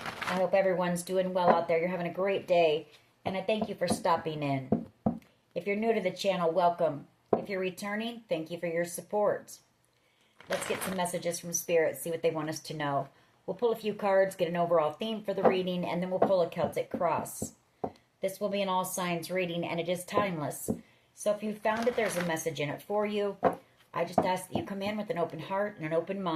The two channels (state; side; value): identical; both; correlation 1.00